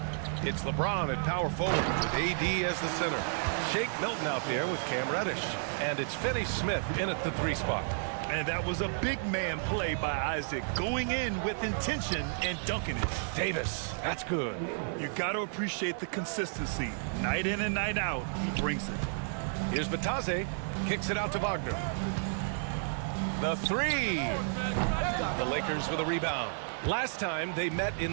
It's LeBron at power forward with AD as the center. Shake Milton out there with Cam Reddish. And it's Finney Smith in at the 3 spot. And that was a big man play by Isaac, going in with intention and dunking it. Davis, that's good. You got to appreciate the consistency. Night in and night out, he brings it. Here's Batadze, kicks it out to Wagner. The 3. The Lakers with a rebound. Last time they met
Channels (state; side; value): silent; left; digital silence